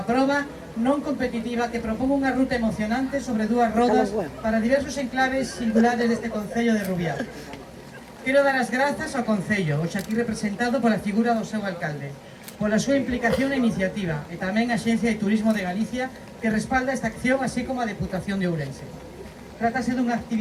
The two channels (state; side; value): identical; both; correlation 1.00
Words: proba non competitiva que propón unha ruta emocionante sobre dúas rodas para diversos enclaves singulares deste Concello de Rubiá. Quero dar as grazas ao Concello, hoxe aquí representado pola figura do seu alcalde, pola súa implicación e iniciativa, e tamén a Axencia de Turismo de Galicia que respalda esta acción, así como a Deputación de Ourense. Trátase dunha